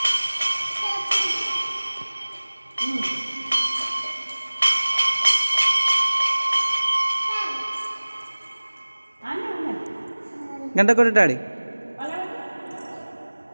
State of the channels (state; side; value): inverted; both; correlation -1.00